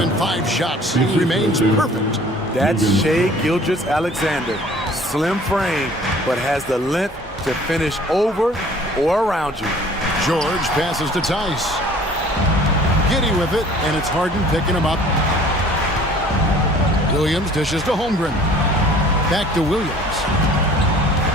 in 5 shots. He remains perfect. That's Shai Gilgeous-Alexander. Slim frame, but has the length to finish over or around you. George passes to Tice. Giddey with it, and it's Harden picking him up. Williams dishes to Holmgren. Back to Williams.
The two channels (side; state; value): both; normal; correlation 0.51